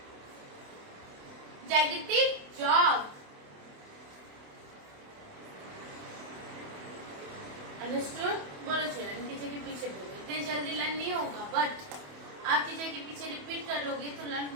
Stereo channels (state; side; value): late; left; 28 ms